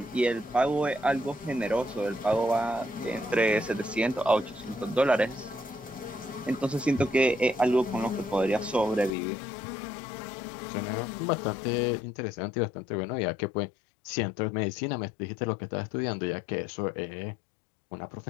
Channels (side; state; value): right; drops out; at 9.1 s